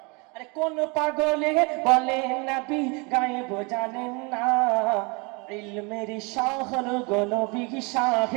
আরে কোন পাগলে বলে নবী গায়েব জানেন না, ইলমের শহর গো নবী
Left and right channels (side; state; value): left; quieter; 30.1 dB